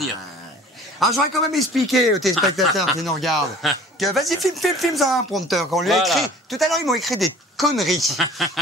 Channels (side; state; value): both; normal; correlation 0.47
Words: Alors, j'aurais quand même expliqué aux téléspectateurs qui nous regardent que vas-y, filme ça un prompteur. Quand on lui a écrit. Tout à l'heure, ils m'ont écrit des conneries